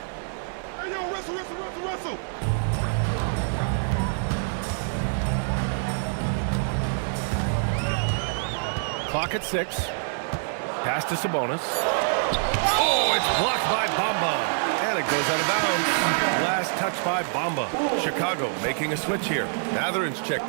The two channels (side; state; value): left; silent; digital silence